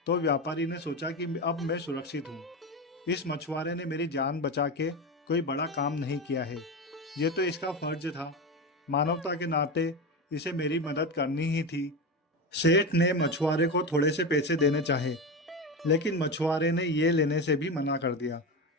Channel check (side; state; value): both; normal; correlation 0.20